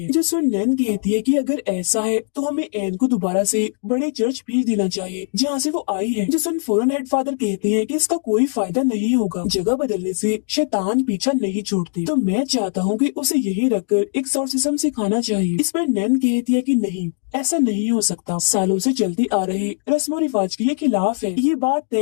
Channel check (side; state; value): right; silent; digital silence